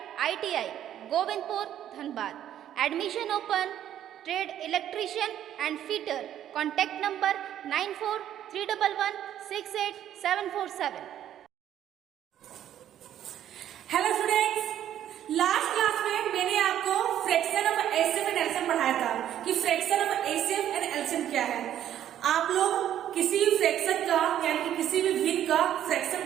ITI Govindpur Dhanbad. Admission open. Trade electrician and fitter. Contact number 9431168747. Hello students, last class में मैंने आपको fraction of HCF and LCM पढ़ाया था कि fraction of HCF and LCM क्या है. आप लोग किसी भी फ्रैक्शन का यानी कि किसी भी भिन्न का फ्रैक्शन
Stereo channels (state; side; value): quieter; left; 11.1 dB